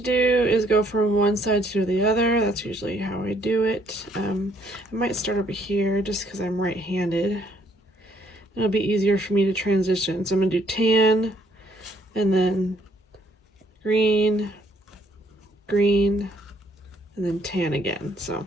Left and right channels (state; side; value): normal; both; correlation 0.67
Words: do is go from one side to the other. That's usually how I do it. I might start over here just because I'm right-handed. It'll be easier for me to transition. So I'm gonna do tan, and then green, green, and then tan again. So